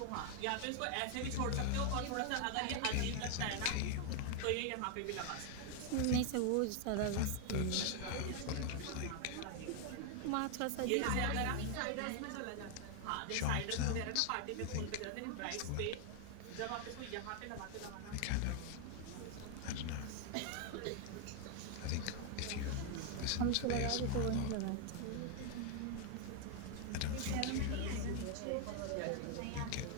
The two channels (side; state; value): both; different; correlation 0.00